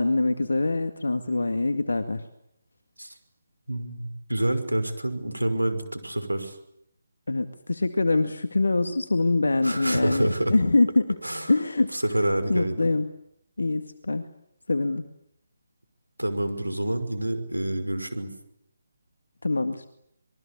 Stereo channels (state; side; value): inverted; both; correlation -0.97